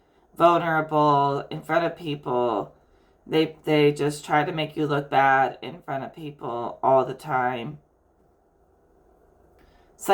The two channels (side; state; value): both; identical; correlation 1.00